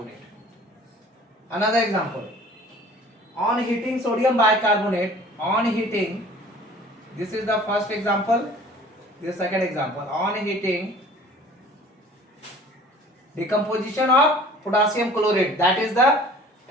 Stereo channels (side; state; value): both; normal; correlation 0.48